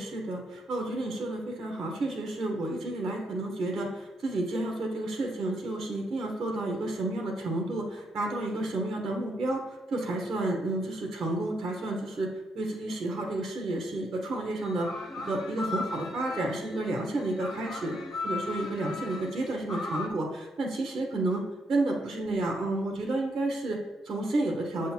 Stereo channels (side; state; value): both; normal; correlation 0.77